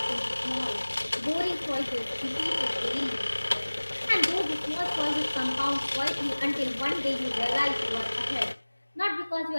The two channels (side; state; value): both; inverted; correlation -1.00